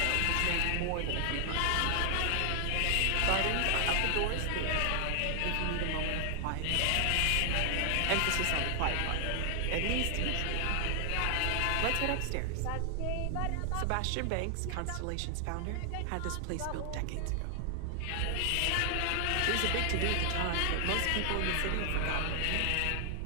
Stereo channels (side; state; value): both; different; correlation 0.00